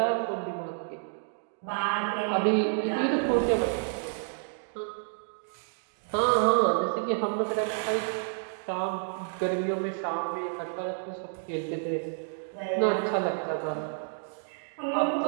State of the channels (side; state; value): left; silent; digital silence